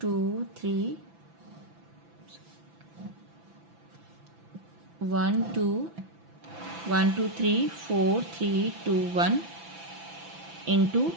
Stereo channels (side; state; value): left; late; 6.0 ms